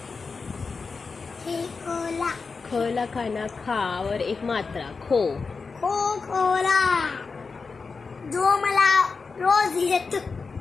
खेकोला, खला खाना खावर एक मात्रा खो खोला, जो मला रोज येत,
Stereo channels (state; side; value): quieter; right; 4.7 dB